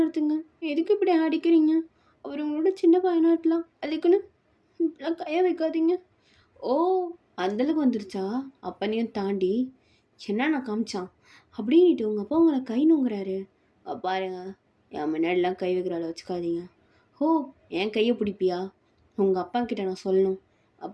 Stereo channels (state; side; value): identical; both; correlation 1.00